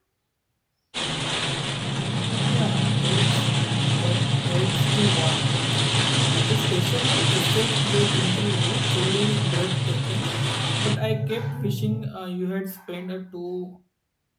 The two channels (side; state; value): both; identical; correlation 1.00